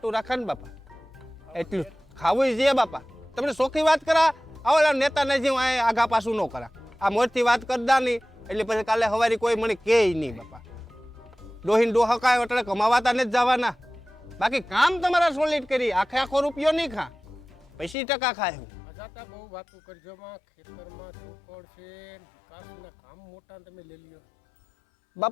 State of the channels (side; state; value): right; drops out; at 17.9 s